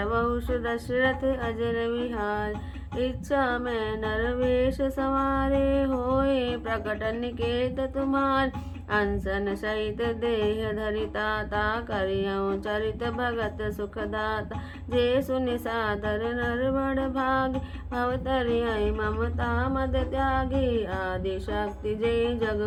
दशरथ अजर विहार इच्छा में नरवेश सवारे होए प्रकट निकेत तुम्हार अनसन सहित देह धरिता ता करियऊँ चरित भगत सुखदाता जे सुनि सादर नर बड़ भाग भवतरिय ममता मद त्यागी आदि शक्ति जे जग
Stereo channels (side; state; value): both; identical; correlation 1.00